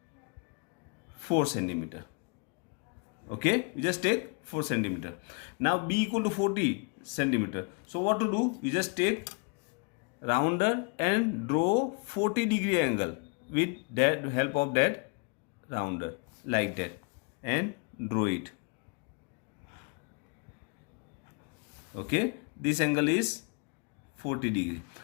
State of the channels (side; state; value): right; quieter; 34.2 dB